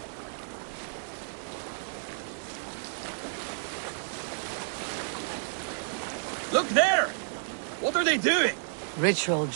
Look there! What are they doing? Ritual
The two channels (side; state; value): left; silent; digital silence